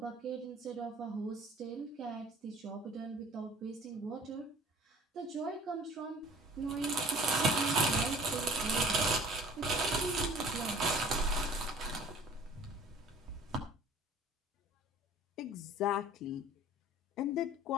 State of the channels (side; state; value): both; normal; correlation 0.48